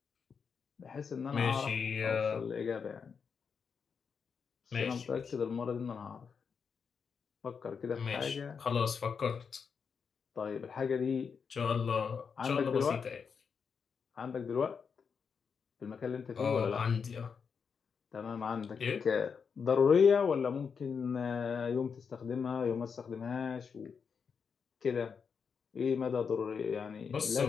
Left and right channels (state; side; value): quieter; right; 6.1 dB